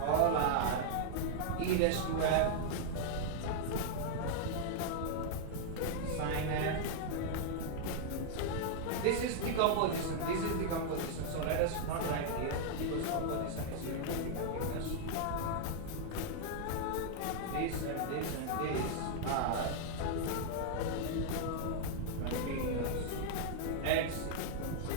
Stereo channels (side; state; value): both; different; correlation -0.01